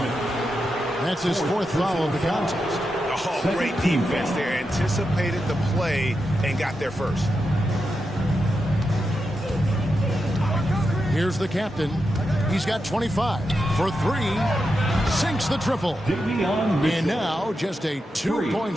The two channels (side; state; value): both; normal; correlation 0.87